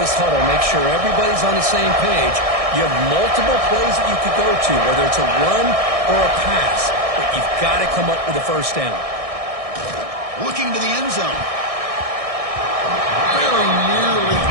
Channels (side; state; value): left; late; 1.6 ms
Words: huddle, make sure everybody's on the same page. You have multiple plays that you could go to, whether it's a run or a pass, but you've got to come up with a first down. Looking to the end zone. Very nearly